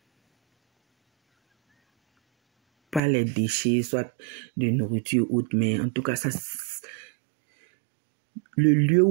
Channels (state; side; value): drops out; left; at 3.0 s